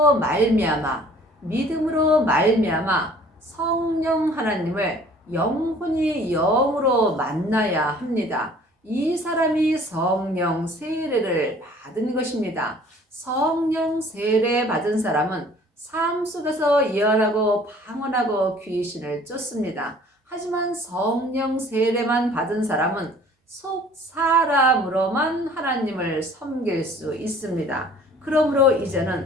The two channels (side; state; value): both; normal; correlation 0.52